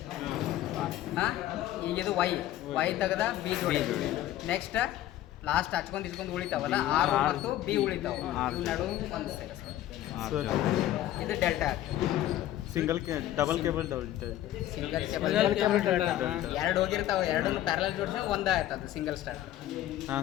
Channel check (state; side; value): quieter; right; 13.4 dB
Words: ಹಾಂ, ಈಗ ಇದು ವೈ ತೆಗೆದ ಬಿ ಜೋಡೆ. ನೆಕ್ಸ್ಟ್ ಲಾಸ್ಟ್ ಹಚ್ಕೊಂಡು ಉಳಿತಾವಲ್ಲ, ಆರ್ ಮತ್ತು ಬಿ ಉಳಿತಾವ, ಇವು ನಡುವೆ ಒಂದು ಸರ್ ಇದು delta. Double cable single cable ಎರಡು ಹೋಗಿರ್ತಾವೆ, ಎರಡನ್ನು ಪ್ಯಾರಲಲ್ ಜೋಡಿಸಿ ಒಂದೇ ಆಯ್ತದ ಸಿಂಗಲ್ ಸ್ಟಾರ್. ಹಾಂ